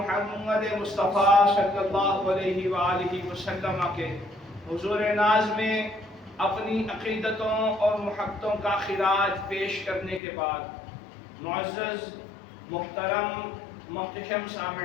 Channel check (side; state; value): right; drops out; at 10.2 s